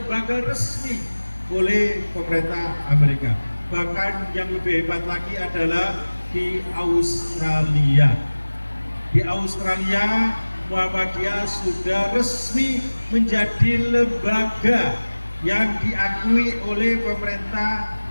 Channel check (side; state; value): both; inverted; correlation -1.00